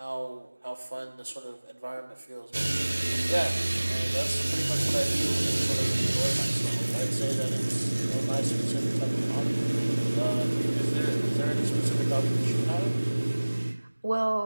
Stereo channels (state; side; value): inverted; both; correlation -1.00